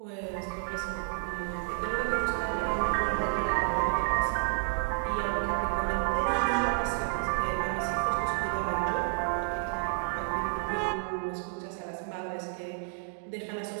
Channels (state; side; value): silent; left; 57 dB below the other